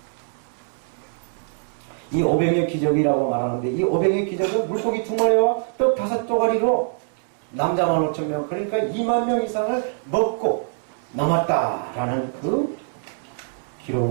이 오병의 기적이라고 말하는데 이 오병의 기적은 물고기 2마리와 떡 5조가리로 남자만 5,000명 그러니까 20,000명 이상을 먹고 남았다라는 그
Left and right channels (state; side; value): silent; left; digital silence